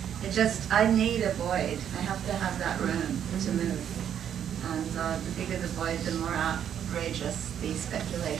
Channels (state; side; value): quieter; left; 9.3 dB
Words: it just, I need a void. I have to have that room to move. And the bigger the void, the more outrageous the